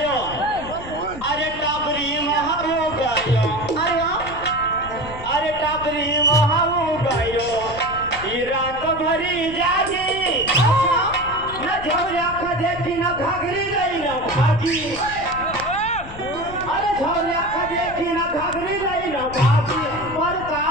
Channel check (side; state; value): left; noise; rumble, 14 dB below the sound